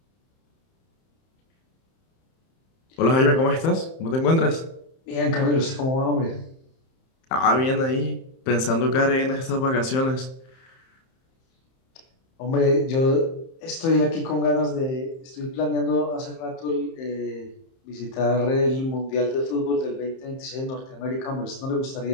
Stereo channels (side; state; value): right; late; 31 ms